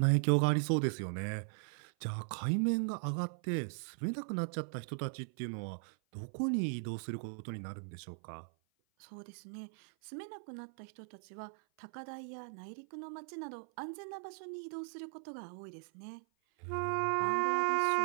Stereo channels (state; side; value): silent; left; 52 dB below the other